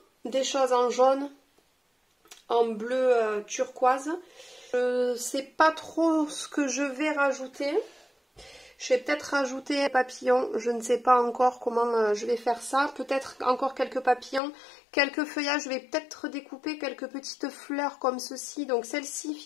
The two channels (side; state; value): right; drops out; at 14.4 s